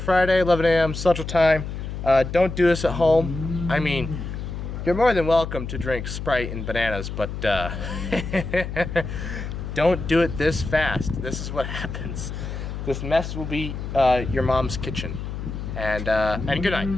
11 a.m. Central Time. Don't do this at home. I mean, you're more than welcome to drink Sprite and bananas, but don't do it this fast. This is what happens. This mess will be your mom's kitchen. And good night.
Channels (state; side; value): noise; left; hum, 6 dB below the sound